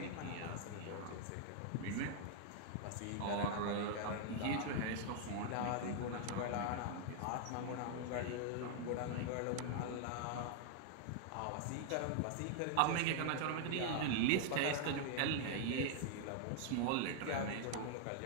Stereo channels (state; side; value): different; both; correlation 0.00